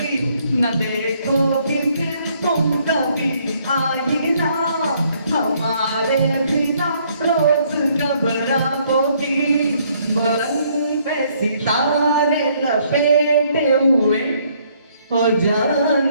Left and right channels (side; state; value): both; inverted; correlation -0.67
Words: न देखोगी फिर तुम कभी आईना, हमारे बिना रोज घबराओगी। बरन पे सितारे लपेटे हुए और